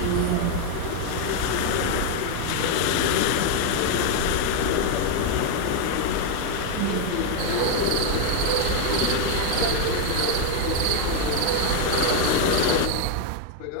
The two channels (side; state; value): both; different; correlation 0.01